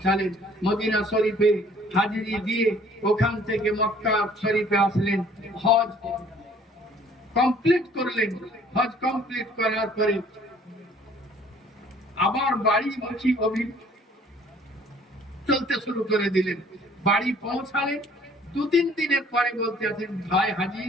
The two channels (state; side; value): normal; both; correlation 0.56